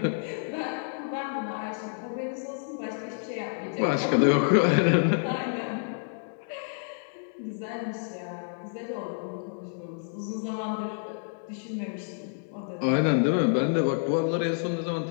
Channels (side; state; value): right; silent; digital silence